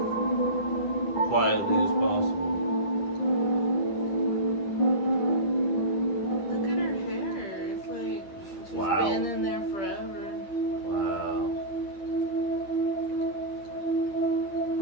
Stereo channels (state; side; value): late; right; 10 ms